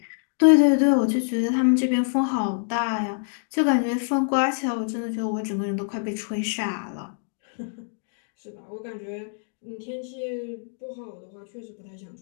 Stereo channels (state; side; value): silent; right; digital silence